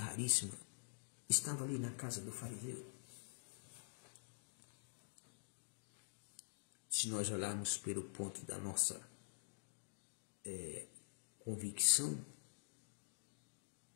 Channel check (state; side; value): silent; right; digital silence